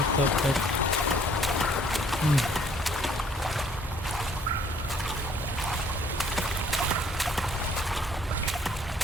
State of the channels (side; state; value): both; normal; correlation 0.60